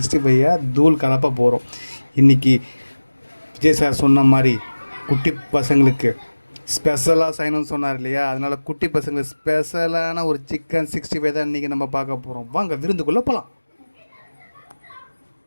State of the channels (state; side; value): inverted; both; correlation -1.00